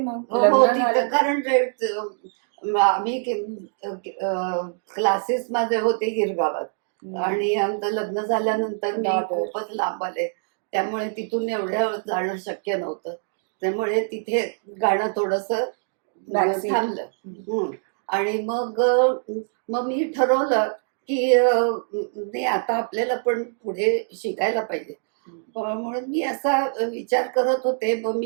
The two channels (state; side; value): silent; left; digital silence